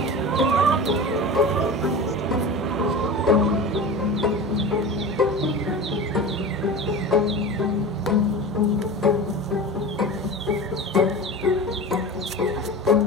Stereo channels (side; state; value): both; normal; correlation 0.31